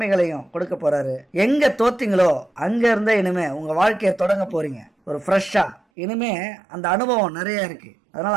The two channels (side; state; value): left; drops out; at 5.8 s